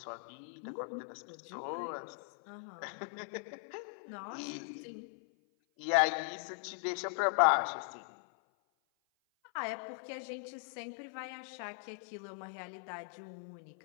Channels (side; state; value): right; silent; 52 dB below the other